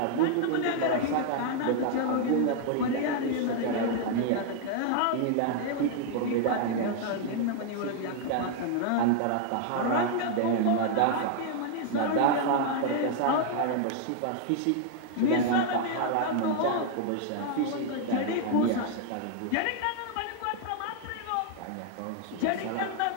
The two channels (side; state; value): both; different; correlation 0.00